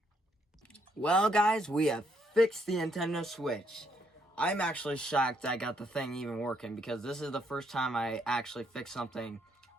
Well, guys, we have fixed the Nintendo Switch. I'm actually shocked I got the thing even working because this is the first time I actually fixed something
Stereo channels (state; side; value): normal; both; correlation 0.72